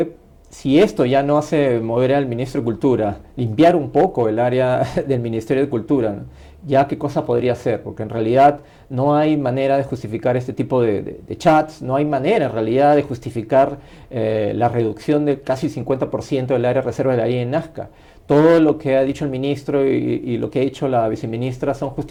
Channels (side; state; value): both; identical; correlation 1.00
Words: Si esto ya no hace mover al Ministro de Cultura, limpiar un poco el área del Ministerio de Cultura, ¿no? Ya qué cosa podría hacer, porque en realidad no hay manera de justificar este tipo de chats, no hay manera en realidad de justificar la reducción de casi 50% del área de reserva de la ley en Nazca. Todo lo que ha dicho el ministro y lo que ha dicho la viceministra son